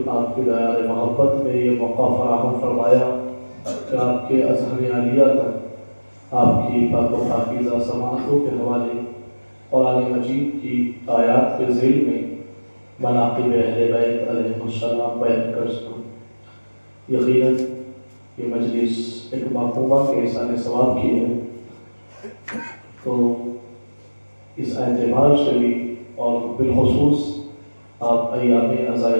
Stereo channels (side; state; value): both; inverted; correlation -1.00